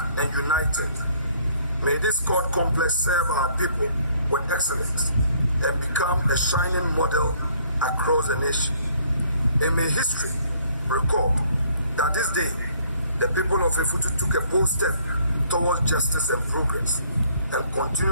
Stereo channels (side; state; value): both; inverted; correlation -0.62